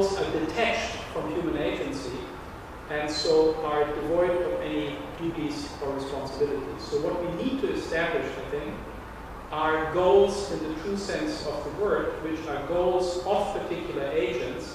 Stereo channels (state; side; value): identical; both; correlation 1.00